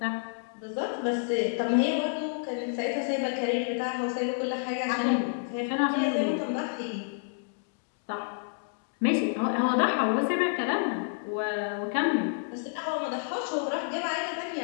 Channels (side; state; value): right; silent; digital silence